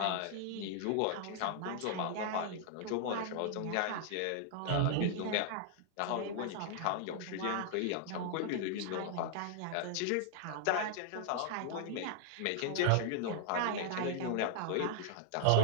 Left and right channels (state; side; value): different; both; correlation 0.00